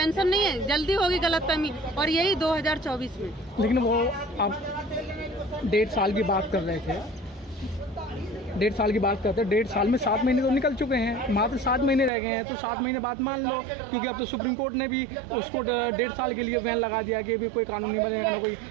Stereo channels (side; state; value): left; drops out; at 12.1 s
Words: नहीं है, जल्दी होगी गलतफहमी, और यही 2024 में। लेकिन वो आप 1.5 साल की बात कर रहे थे, 1.5 साल की बात करते हैं। 1.5 साल में 7 महीने तो निकल चुके हैं, मात्र 7 महीने रह गए हैं। तो 7 महीने बाद मान लो, क्योंकि अब तो सुप्रीम कोर्ट ने भी उसको 1.5 साल के लिए बैन लगा दिया कि भी कोई कानून नहीं बनेगा, ना कोई